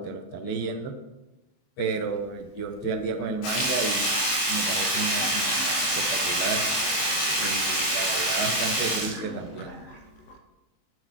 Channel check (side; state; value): right; late; 26 ms